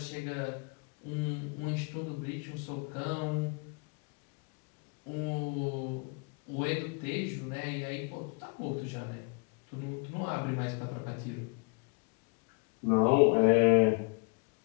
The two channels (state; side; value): quieter; right; 34.0 dB